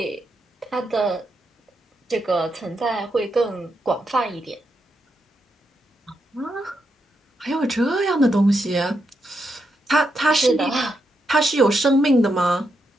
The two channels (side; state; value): both; normal; correlation 0.83